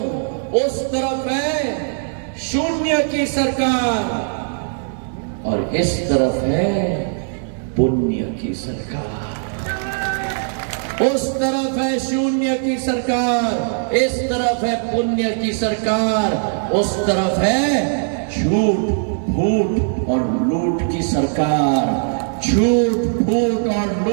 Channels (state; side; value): silent; left; digital silence